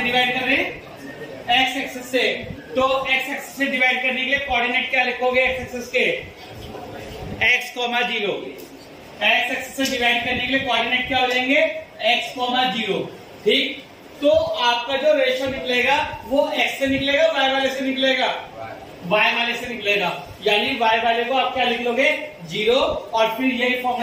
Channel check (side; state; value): both; identical; correlation 1.00